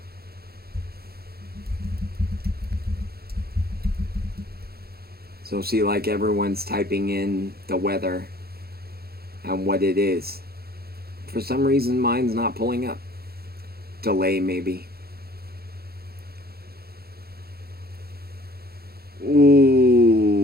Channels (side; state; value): left; late; 0.45 ms